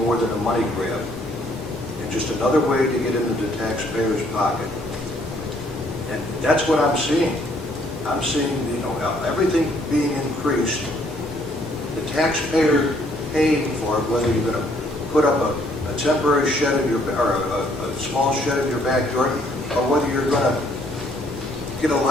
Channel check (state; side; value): normal; both; correlation 0.65